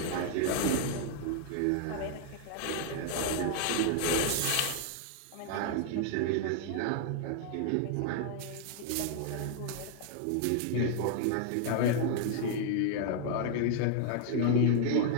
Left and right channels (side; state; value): both; different; correlation 0.00